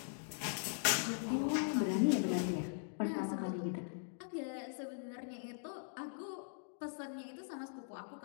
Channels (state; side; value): silent; right; digital silence